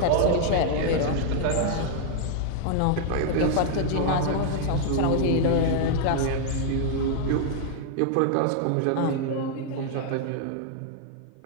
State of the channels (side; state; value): both; different; correlation 0.00